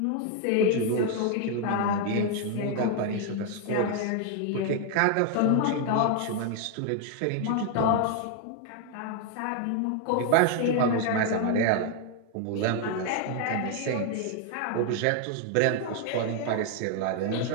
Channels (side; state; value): both; different; correlation 0.00